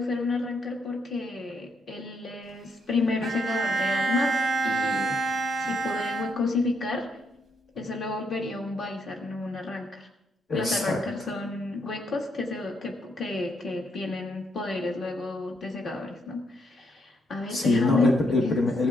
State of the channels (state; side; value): normal; both; correlation 0.76